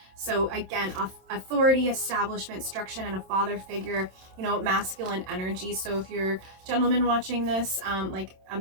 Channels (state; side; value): late; left; 27 ms